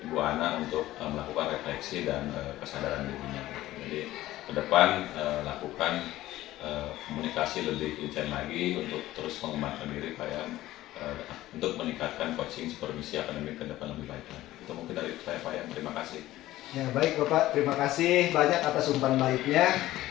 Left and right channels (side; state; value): right; quieter; 15.6 dB